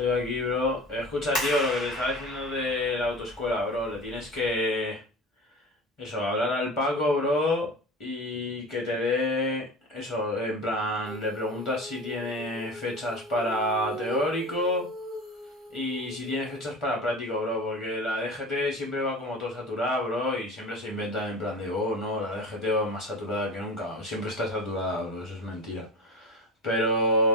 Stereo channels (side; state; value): both; normal; correlation 0.33